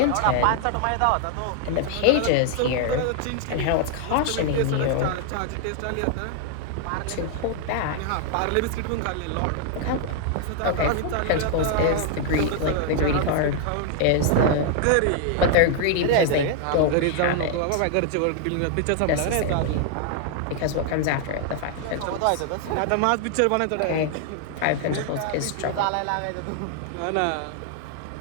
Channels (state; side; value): different; both; correlation 0.00